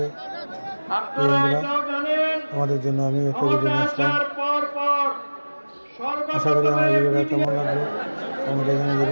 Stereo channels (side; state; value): both; inverted; correlation -1.00